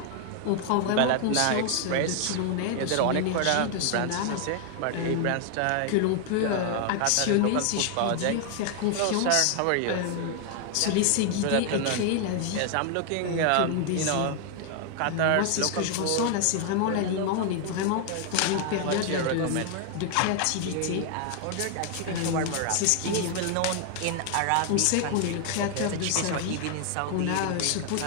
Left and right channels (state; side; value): different; both; correlation 0.00